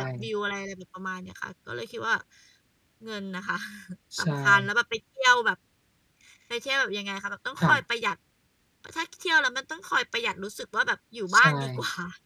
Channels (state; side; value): identical; both; correlation 1.00